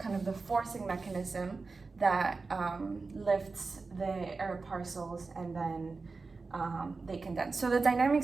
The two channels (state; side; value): quieter; left; 4.1 dB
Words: of the forcing mechanism that lifts the air parcels and then they condense. So the